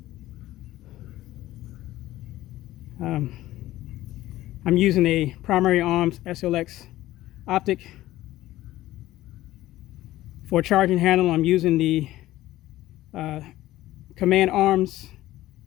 I'm using a Primary Arms SLX optic. For charging handle, I'm using the Command Arms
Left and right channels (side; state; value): right; quieter; 15.6 dB